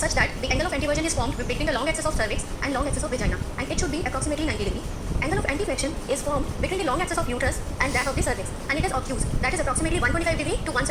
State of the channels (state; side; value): identical; both; correlation 1.00